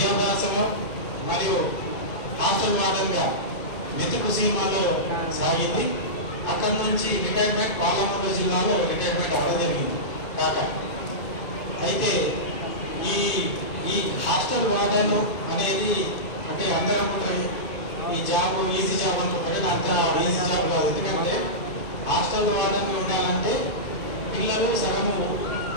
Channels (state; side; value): late; right; 2.5 ms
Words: మరియు హాస్టల్ వార్డన్గా మెతుకు సినిమాలో సాగింది. అక్కడి నుంచి రిటైర్మెంట్ పాలమూరు జిల్లాలో రిటైర్మెంట్ అవ్వడం జరిగింది కాక. అయితే ఈ హాస్టల్ వార్డన్ అనేది అంటే అందరం ఈ జాబ్ ఈజీ జాబ్ అనుకుంటే అంత ఈజీ జాబ్ కాదు. ఎందుకంటే హాస్టల్ వార్డన్ ఉండాలంటే పిల్లలు సగం